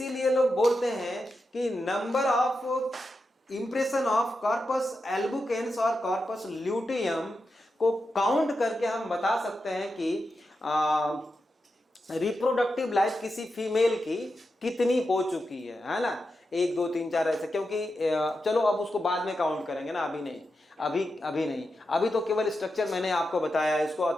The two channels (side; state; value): both; normal; correlation 0.88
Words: लोग बोलते हैं कि number of impression of corpus albicans और कॉर्पस ल्यूटेयम को काउंट करके हम बता सकते हैं कि रिप्रोडक्टिव लाइफ किसी फीमेल की कितनी हो चुकी है ना, 1 2 3 4 ऐसे। क्योंकि चलो अब उसको बाद में काउंट करेंगे ना, अभी नहीं, अभी नहीं, अभी तो केवल स्ट्रक्चर मैंने आपको बताया है। इसको